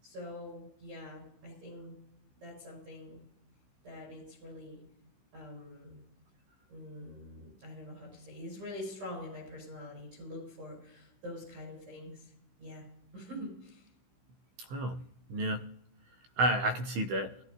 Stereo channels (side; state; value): left; late; 16 ms